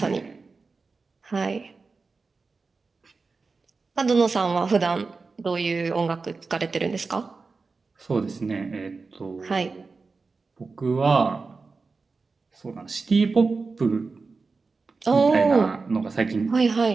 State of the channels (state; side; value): quieter; left; 4.2 dB